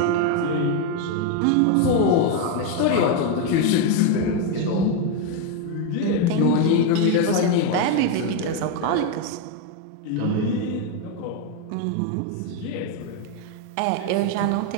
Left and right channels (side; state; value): both; different; correlation 0.02